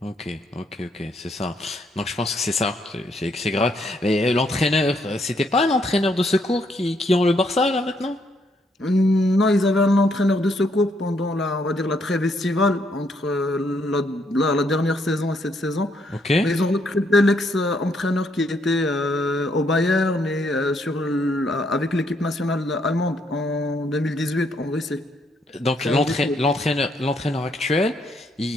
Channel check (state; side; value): normal; both; correlation 0.73